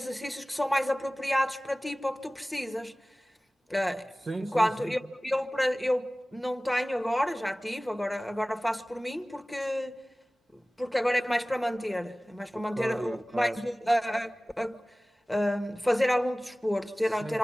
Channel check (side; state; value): both; normal; correlation 0.98